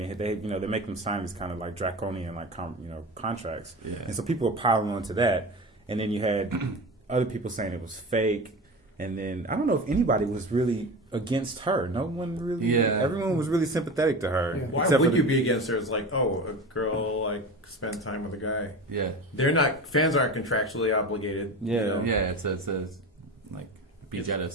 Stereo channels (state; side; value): normal; both; correlation 0.29